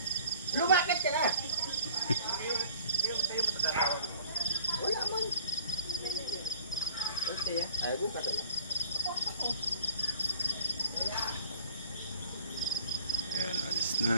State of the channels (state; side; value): inverted; both; correlation -0.49